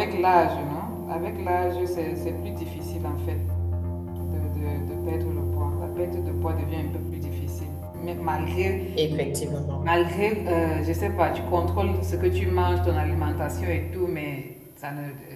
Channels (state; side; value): identical; both; correlation 1.00